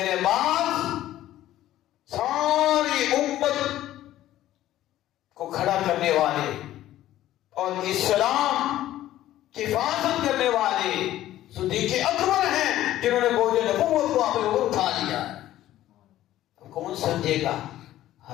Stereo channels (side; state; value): right; quieter; 13.8 dB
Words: بعد ساری امت کو کھڑا کرنے والے اور اسلام کی حفاظت کرنے والے صدیق اکبر ہیں، جنہوں نے بوجھ نبوت کو اپنے اوپر اٹھا لیا۔ کون سمجھے گا؟